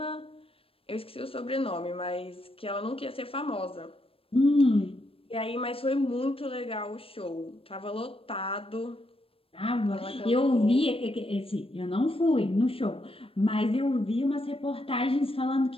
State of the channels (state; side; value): late; right; 0.27 ms